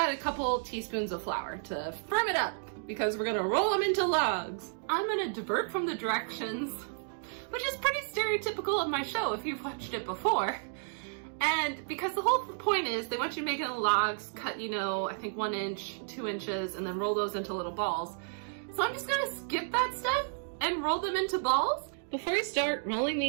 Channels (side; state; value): left; silent; digital silence